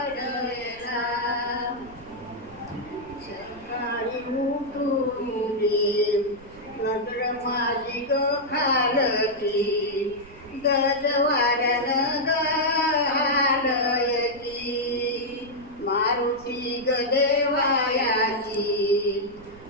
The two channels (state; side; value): noise; right; rumble, 22 dB below the sound